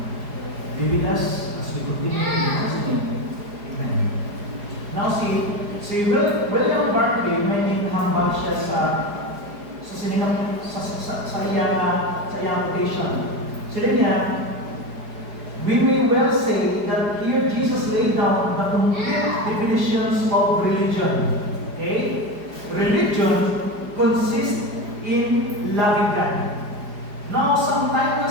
Be with us as we continue in Jesus' name. Amen. Now si William Barclay, may hambal siya sa iyang quotation. Sila niya, we may well say that here Jesus laid down the complete definitions of religion. Okay? Religion consists in loving God. Now, sometimes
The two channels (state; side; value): late; left; 4.8 ms